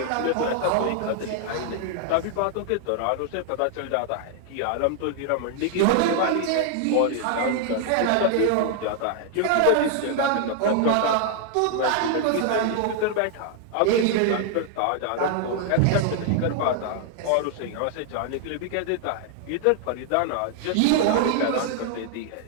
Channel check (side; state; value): both; different; correlation 0.00